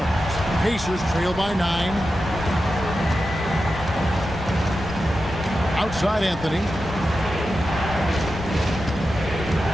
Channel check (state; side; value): normal; both; correlation 0.91